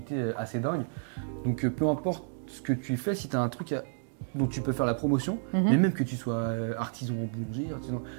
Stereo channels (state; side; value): silent; left; digital silence